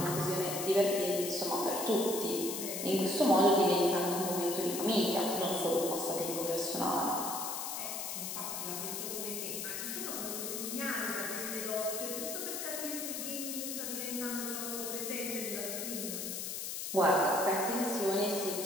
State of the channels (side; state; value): left; noise; hiss, 4 dB below the sound